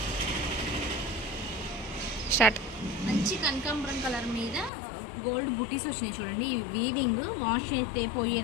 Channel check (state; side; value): drops out; right; at 4.7 s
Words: స్టార్ట్. మంచి కనకాంబరం కలర్ మీద గోల్డ్ బుటీస్ వచ్చినాయి చూడండి. ఈ వీవింగ్ వాష్ అయితే